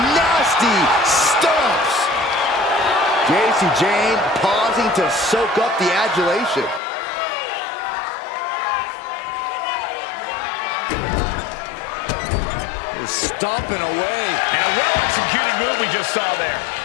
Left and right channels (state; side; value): drops out; right; at 6.8 s